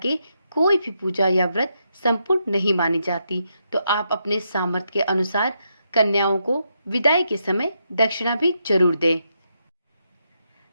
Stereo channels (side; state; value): both; inverted; correlation -0.81